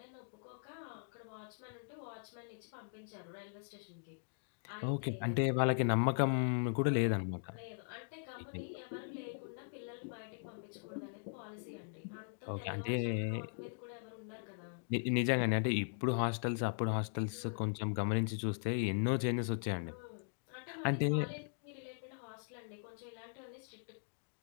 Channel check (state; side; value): silent; right; digital silence